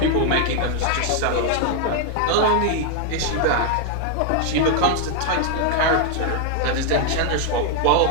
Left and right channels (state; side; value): different; both; correlation 0.00